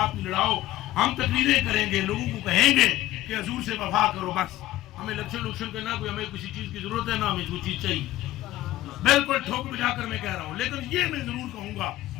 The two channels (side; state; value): right; quieter; 15.5 dB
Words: ہی لڑاؤ. ہم تقریریں کریں گے، لوگوں کو کہیں گے کہ حضور سے وفا کرو. بس ہمیں الیکشن کرنا، کوئی ہمیں کسی چیز کی ضرورت ہے نہ ہمیں کوئی چیز چاہیے. بالکل ٹھوک بجا کر میں کہہ رہا ہوں، لیکن یہ میں ضرور کہوں گا